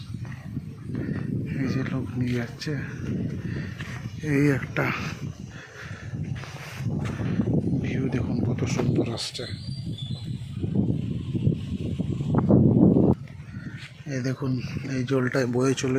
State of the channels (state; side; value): identical; both; correlation 1.00